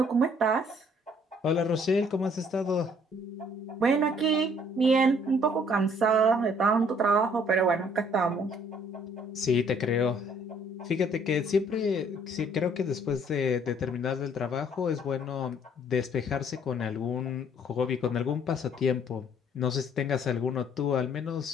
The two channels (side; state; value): both; normal; correlation 0.61